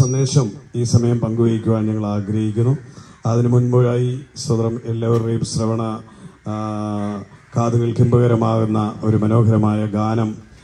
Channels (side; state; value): both; identical; correlation 1.00